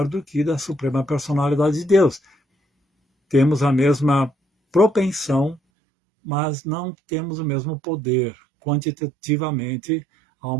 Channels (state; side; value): drops out; left; at 5.6 s